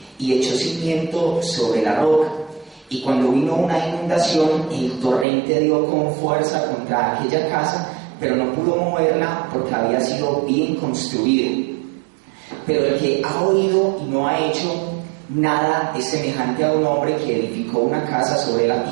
y echó cimiento sobre la roca. Y cuando vino una inundación, el torrente dio con fuerza contra aquella casa, pero no pudo moverla porque había sido bien construida. Pero el que ha oído y no ha hecho nada es semejante a un hombre que edificó una casa sobre la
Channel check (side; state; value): left; drops out; at 5.2 s